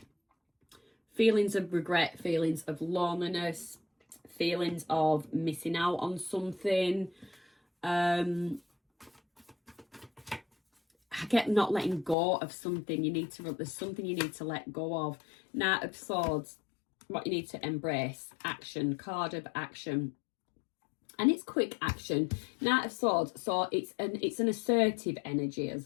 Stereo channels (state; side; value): drops out; right; at 12.2 s